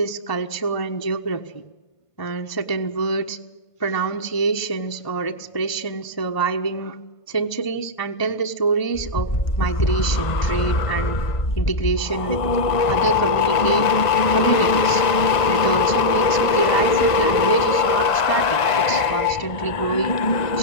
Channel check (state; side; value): late; right; 1.5 ms